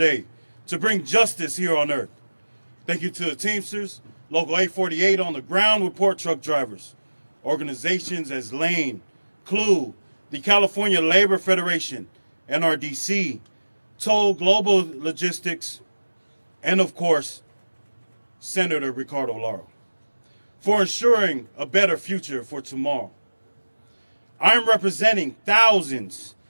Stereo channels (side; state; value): both; inverted; correlation -1.00